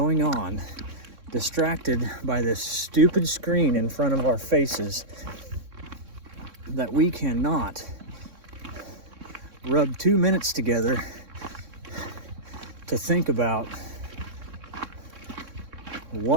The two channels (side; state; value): left; late; 3.6 ms